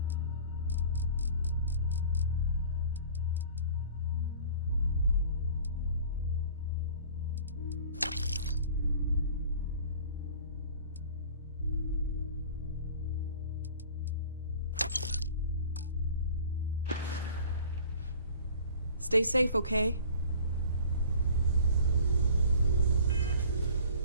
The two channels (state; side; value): inverted; both; correlation -0.46